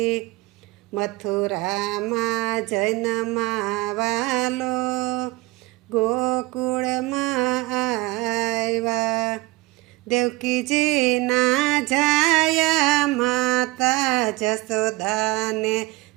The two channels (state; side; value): quieter; left; 20.8 dB